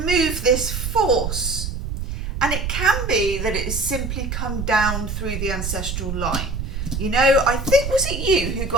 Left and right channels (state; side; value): noise; right; rumble, 4 dB below the sound